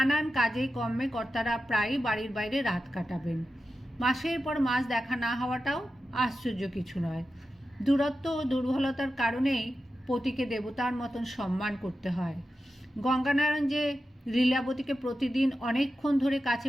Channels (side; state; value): both; normal; correlation 0.91